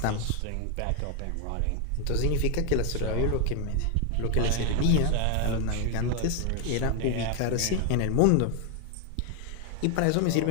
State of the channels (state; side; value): different; both; correlation 0.01